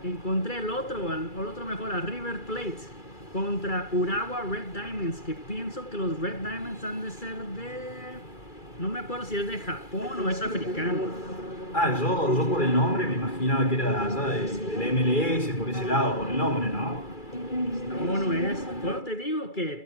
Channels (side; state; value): right; late; 2.3 ms